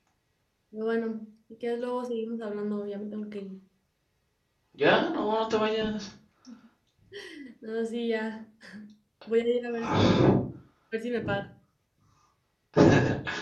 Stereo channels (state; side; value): identical; both; correlation 1.00